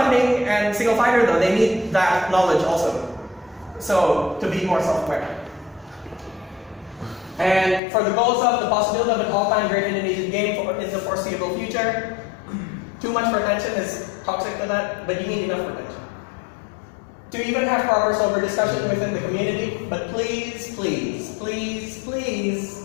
and single fighter, though, they need that knowledge also. So, to be more self-aware. And for the goals of the possibility of an all-time great Indonesian game in the foreseeable future, too much pretension is toxic to that, but you need enough pretension. To even have proper sober discussion within the community, but please, please, please,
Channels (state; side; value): drops out; right; at 7.8 s